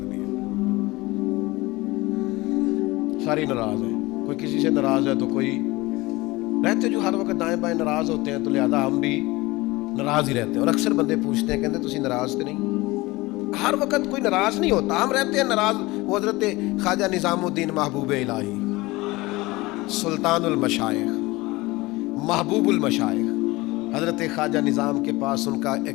دیا۔ سارے ناراض ہیں، کوئی کسی سے ناراض ہے تو کوئی رہتے جو ہر وقت دائیں بائیں ناراض ہوتے ہیں، تو لہذا ہم بھی ناراض ہی رہتے ہیں۔ اور اکثر بندے پوچھتے ہیں، کہتے تسی ناراض تو نہیں؟ ہر وقت کوئی ناراض نہیں ہوتا، ہم رہتے ہیں ناراض۔ وہ حضرت خواجہ نظام الدین محبوب الہی، سلطان المشائخ، محبوب المشائخ، حضرت خواجہ نظام کے پاس ان کا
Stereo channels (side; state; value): right; quieter; 21.2 dB